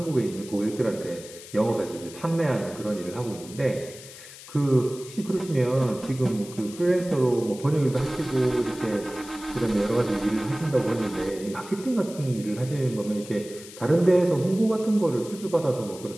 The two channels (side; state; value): left; noise; hiss, 16 dB below the sound